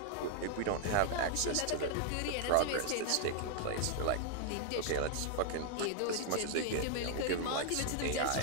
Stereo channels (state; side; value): different; both; correlation 0.00